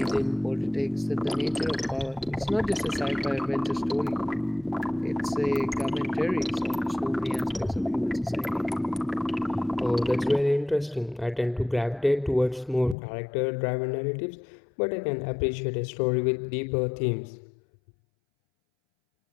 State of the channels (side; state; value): right; drops out; at 13.0 s